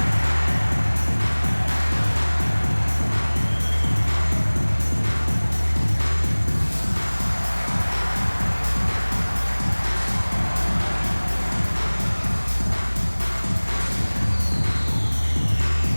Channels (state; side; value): inverted; both; correlation -1.00